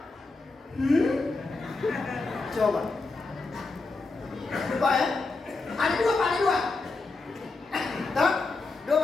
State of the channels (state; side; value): quieter; right; 3.7 dB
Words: Coba. Coba ya. Ada dua Pak, ada dua. Tahu?